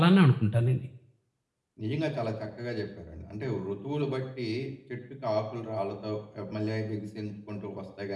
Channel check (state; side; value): identical; both; correlation 1.00